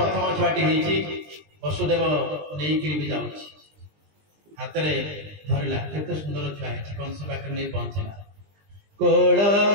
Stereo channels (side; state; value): left; late; 20 ms